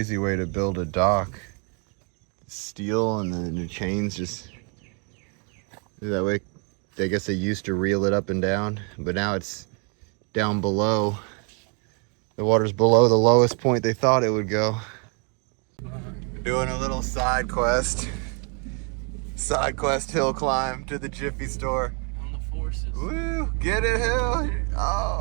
way to build a dock. Steel and then the chains just, that way, I guess they used to reel it up and down, but now it's down below. The water's below the lowest point they thought it would go. Doing a little side quest hill climb to the Jiffy store. On the forces. Woo, get it, Hill.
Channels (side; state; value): left; quieter; 36.7 dB